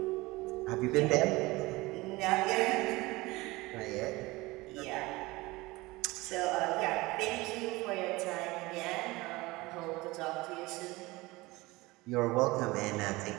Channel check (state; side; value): quieter; left; 21.4 dB